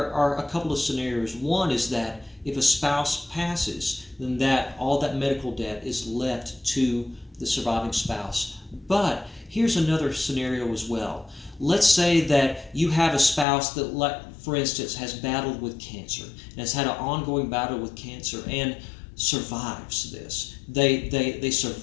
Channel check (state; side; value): drops out; right; at 13.5 s